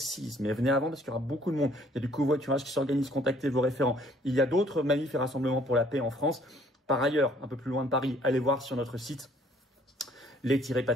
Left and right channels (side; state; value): both; normal; correlation 0.60